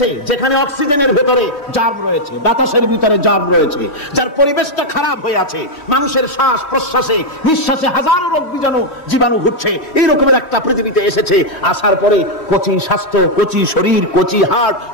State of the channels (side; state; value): right; late; 3.1 ms